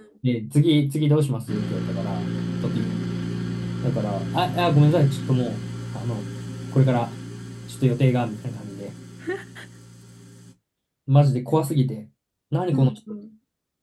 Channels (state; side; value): identical; both; correlation 1.00